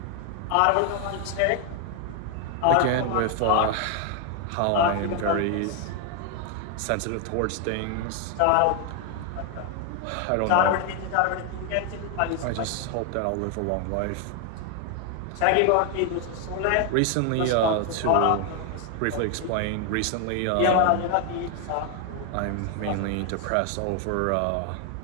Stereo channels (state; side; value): different; both; correlation 0.00